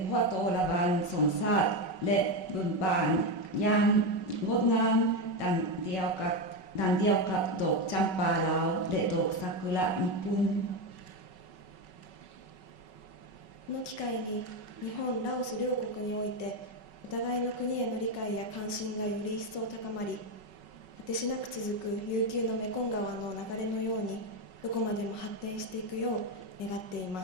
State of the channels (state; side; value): late; right; 5.3 ms